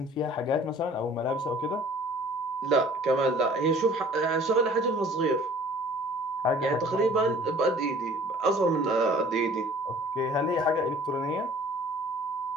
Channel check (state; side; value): normal; both; correlation 0.50